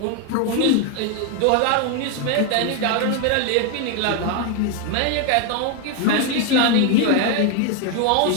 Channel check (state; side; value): different; both; correlation 0.01